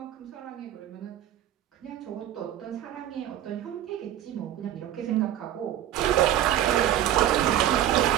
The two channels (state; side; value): quieter; left; 11.8 dB